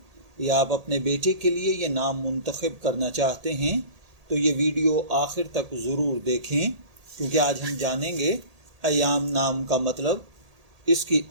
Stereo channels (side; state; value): left; late; 1.8 ms